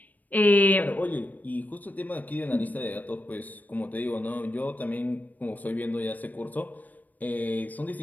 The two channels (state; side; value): late; right; 0.081 ms